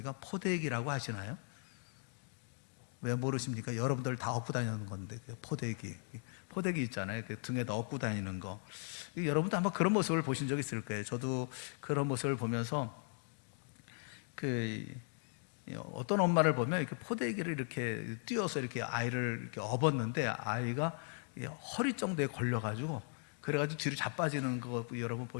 포대기라고 하시나요? 왜 모르십니까? 여러분들 다 업고 다니는 건데, 포대기 있잖아요. 등에다 업고 다니는 거. 여러분도 아마 그런 모습을 보신 적 있을 거예요. 저도 그런 모습을 보면서 어떤 엄마를 보면 이렇게 포대기를 이렇게 띄워서 이렇게 아이를 이렇게 업었는데 아이가 허리 정도에 걸려가지고 그래가지고 뒤로 자빠지는 거 여러분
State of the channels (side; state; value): right; silent; 52 dB below the other